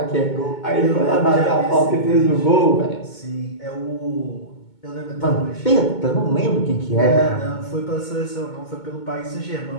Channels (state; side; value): late; right; 2.2 ms